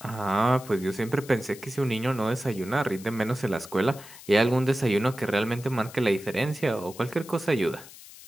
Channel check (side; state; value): left; noise; hiss, 18 dB below the sound